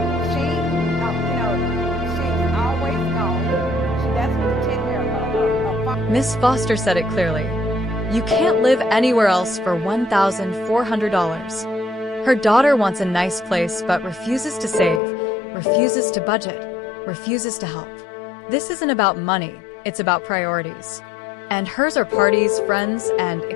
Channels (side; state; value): right; drops out; at 15.0 s